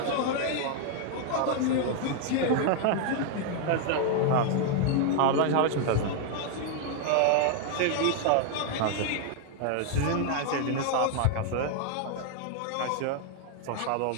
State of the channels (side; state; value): both; different; correlation 0.00